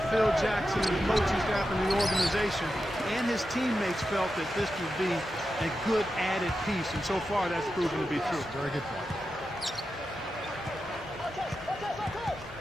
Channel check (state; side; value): normal; both; correlation 0.90